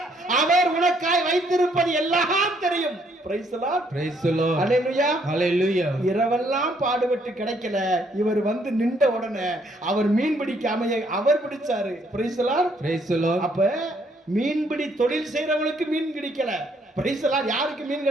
அவர் உனக்காய் வைத்திருப்பது எல்லாம் தெரியும். praise the Lord. Praise the Lord. Hallelujah. Hallelujah. இரவெல்லாம் பாடுபட்டு கிடைக்கல, இவர் வந்து நின்ற உடனே அவர் மீன் பிடிக்க அவர் பிடிச்சாரு. praise the Lord. Praise the Lord. அப்ப மீன்பிடி தொழில் செய்யறவங்களுக்கு மீன் கிடைக்கல. praise the Lord. யாருக்கு மீன்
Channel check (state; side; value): normal; both; correlation 0.69